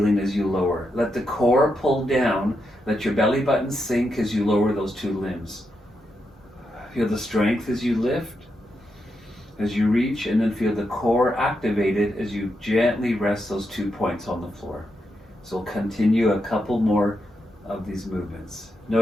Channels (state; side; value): normal; both; correlation 0.84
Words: as you lower. Let the core pull down. Let your belly button sink as you lower those two limbs. Feel the strength as you lift, as you reach, and then feel the core activated as you gently rest those 2 points on the floor. So we'll continue a couple more of these movements.